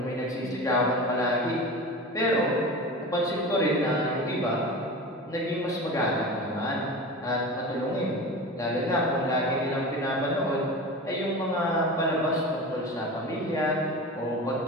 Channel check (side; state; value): both; normal; correlation 0.31